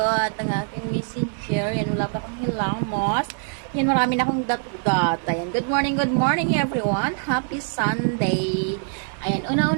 ang aking messenger. Ayan, wala pa akong hilamos. Ayan, marami na akong dat-dat. Ayan, good morning everyone. Happy Sunday. Ayan,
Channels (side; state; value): left; silent; 57 dB below the other